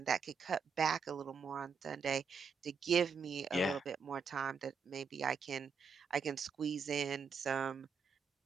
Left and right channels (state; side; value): quieter; left; 5.5 dB